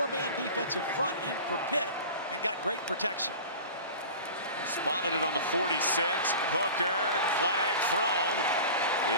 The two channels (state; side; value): inverted; both; correlation -0.37